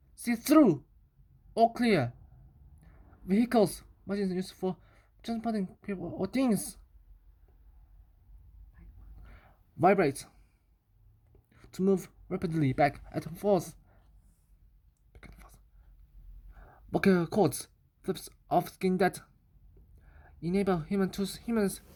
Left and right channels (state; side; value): identical; both; correlation 1.00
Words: see-through, or clear. Vehicles, machines used for transporting people or things. Vibrate, to move rapidly back and forth. Vocal cords, flips of skin that enable humans